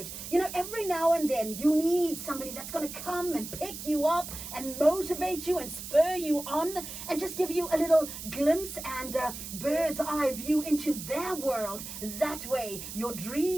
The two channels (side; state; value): right; noise; hiss, 9 dB below the sound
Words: You know, every now and then, you need somebody that's going to come and pick you up and motivate you and spur you on and just give you a little glimpse and bird's eye view into their world. That way, your